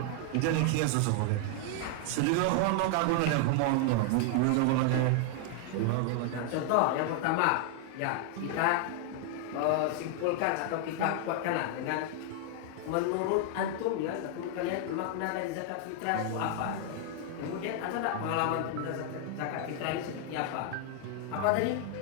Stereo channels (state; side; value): different; both; correlation 0.00